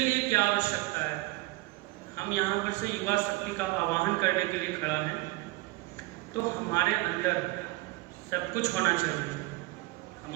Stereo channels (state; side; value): quieter; left; 20.7 dB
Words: क्या आवश्यकता है? हम यहाँ पर से युवा शक्ति का आवाहन करने के लिए खड़ा हैं। तो हमारे अंदर सब कुछ होना चाहिए।